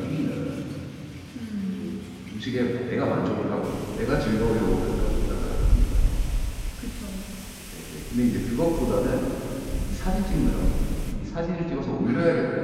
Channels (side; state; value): both; identical; correlation 1.00